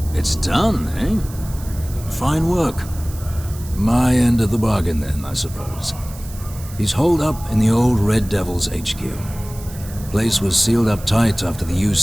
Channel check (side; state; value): right; noise; hiss, 17 dB below the sound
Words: It's done, eh? Fine work. My end of the bargain then, I suppose. He's holed up in the old Red Devil's HQ. Place was sealed up tight after the